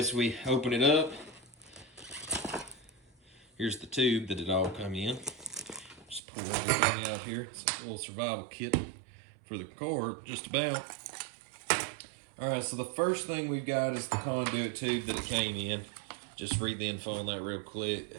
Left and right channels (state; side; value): drops out; left; at 6.2 s